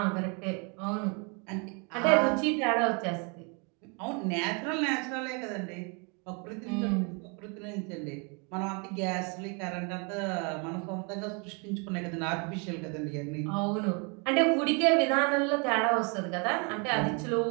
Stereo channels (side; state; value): left; quieter; 34.0 dB